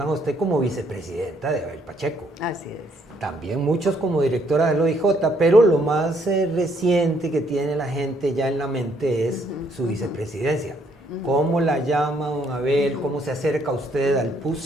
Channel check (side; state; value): both; normal; correlation 0.69